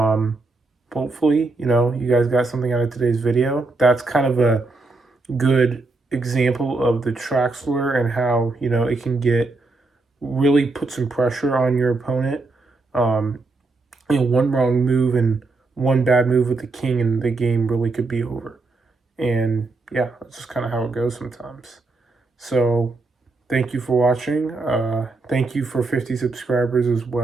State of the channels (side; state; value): left; quieter; 3.5 dB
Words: Hopefully, you guys got something out of today's video. That's kind of a good example of the Traxler and how, it can really put some pressure on your opponent. One wrong move and one bad move with the king and the game really could be over. And yeah, that's just kind of how it goes sometimes. So thank you for watching. Thank you for 50 subscribers as